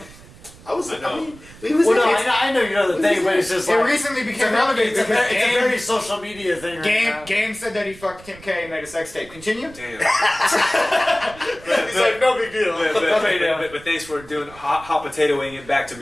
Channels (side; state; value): right; noise; rumble, 21 dB below the sound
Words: I know. mean, we was Well, no, in it. I know you know the thing, but it's just It like recently became relevant it's a because very social media thing. Game said that he fucked Kim K and made a sex tape. Continue. Damn. He's like, no big deal. But thanks for doing hot potatoing it back to